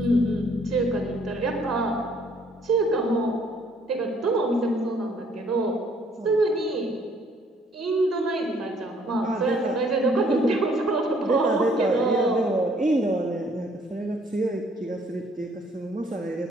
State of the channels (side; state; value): both; normal; correlation 0.63